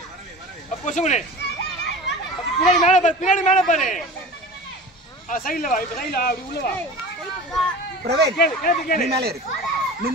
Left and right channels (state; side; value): normal; both; correlation 0.36